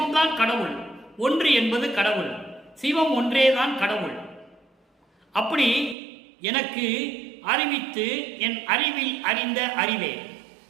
கடவுள். ஒன்று என்பது கடவுள். சிவம் ஒன்றேதான் கடவுள். அப்படி எனக்கு அறிவித்து என் அறிவில் அறிந்த அறிவே,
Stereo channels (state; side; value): drops out; left; at 6.0 s